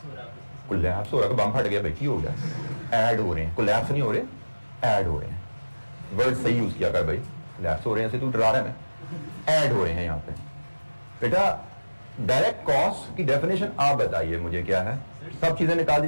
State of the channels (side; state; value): both; inverted; correlation -1.00